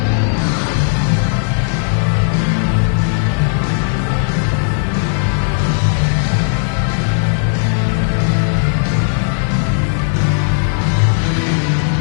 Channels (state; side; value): silent; right; digital silence